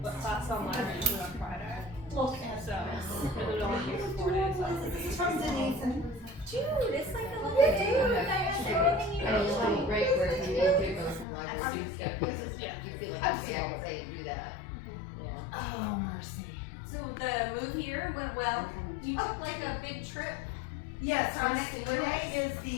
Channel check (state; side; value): drops out; right; at 11.2 s